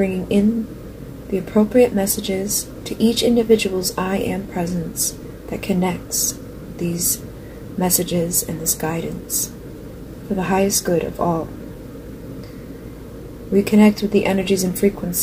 in the appropriate messages to each individual's I Am presence that connects these messages and this guidance for the highest good of all. We connect with the energies and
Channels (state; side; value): identical; both; correlation 1.00